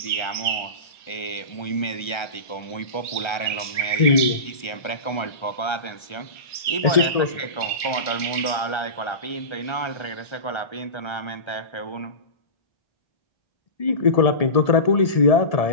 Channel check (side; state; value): right; late; 1.3 ms